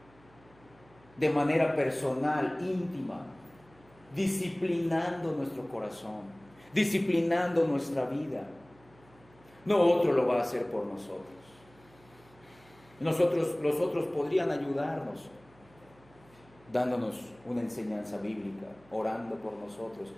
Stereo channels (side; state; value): right; noise; hum, 27 dB below the sound